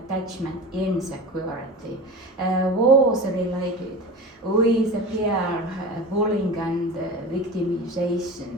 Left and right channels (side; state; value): both; normal; correlation 0.32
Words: insecurity was related with peer bullying and